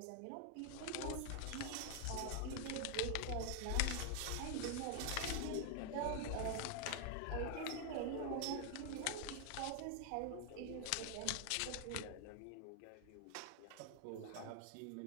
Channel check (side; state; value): both; different; correlation 0.01